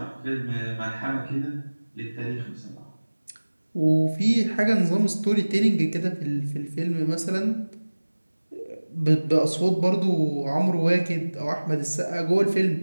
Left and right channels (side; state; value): both; inverted; correlation -1.00